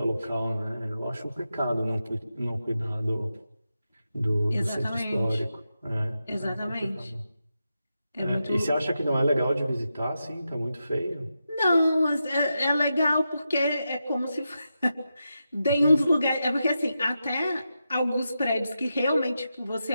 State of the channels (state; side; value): inverted; both; correlation -0.88